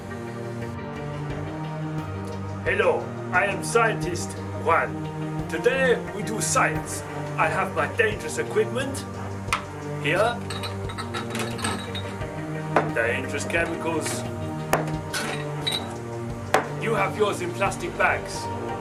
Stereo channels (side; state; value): both; identical; correlation 1.00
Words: Hello, I am scientist Juan. Today we do science. I have my dangerous equipment here, dangerous chemicals. You have yours in plastic bags.